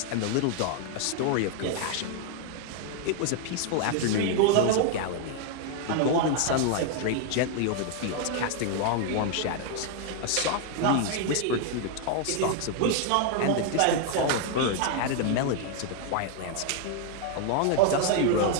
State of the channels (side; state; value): both; different; correlation 0.00